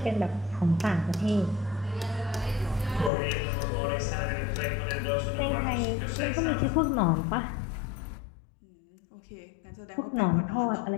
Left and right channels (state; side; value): drops out; right; at 3.1 s